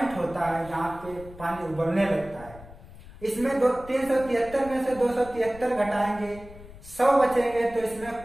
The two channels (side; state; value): left; noise; rumble, 18 dB below the sound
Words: होता है, जहां पे पानी उबलने लगता है। इसमें 373 में से 273 घटाएंगे, 100 बचेंगे। तो